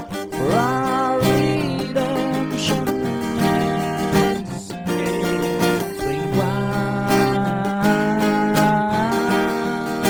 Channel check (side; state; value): both; identical; correlation 1.00